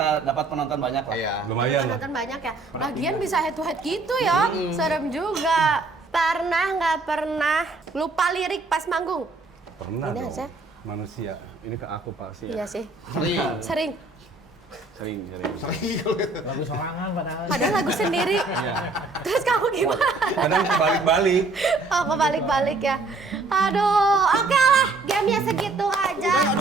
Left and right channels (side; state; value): left; quieter; 3.4 dB